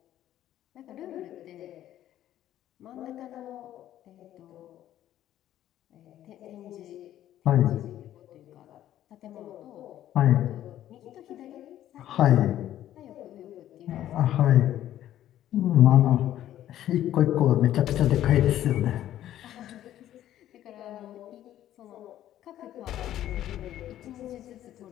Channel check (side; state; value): right; quieter; 12.4 dB